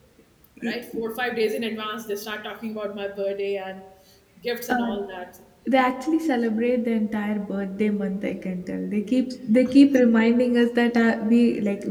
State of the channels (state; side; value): identical; both; correlation 1.00